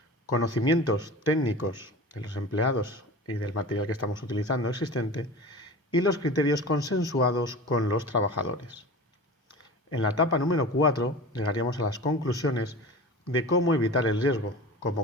conocimientos técnicos de los empleados y del material que estamos utilizando existente, y los criterios consensuados con los trabajadores. En la etapa número 4 llegaríamos a las conclusiones de cómo evitar el riesgo,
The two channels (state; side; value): normal; both; correlation 0.35